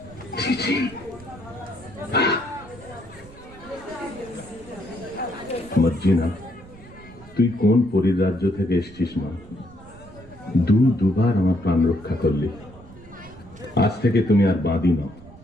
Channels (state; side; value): noise; right; rumble, 20 dB below the sound